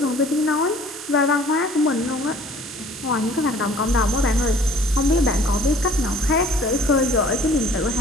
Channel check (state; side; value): normal; both; correlation 0.53